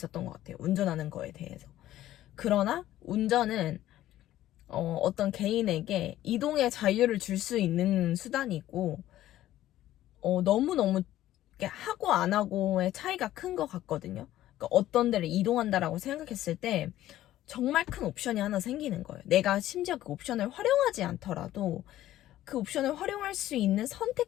것 같아요. 운전하는 거에 대해서. 그러나 운전은 어떤 개인에게 이동의 자유를 줄 수 있는 수단이고 너무너무 하고 안 하고의 차이가 큰 것 같거든요. 그러니까 어떤 데를 이동한다라고 생각했을 때 정말 큰 옵션이 하나 생기는 거예요. 내가 심지어 그 옵션을 활용하지 않더라도 그 옵션을 활용할 수 있는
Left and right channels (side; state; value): right; quieter; 13.9 dB